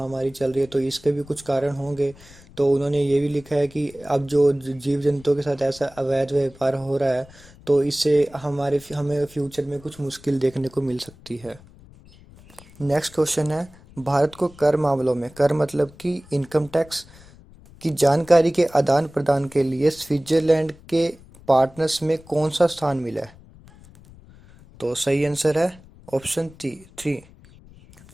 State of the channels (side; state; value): left; noise; rumble, 23 dB below the sound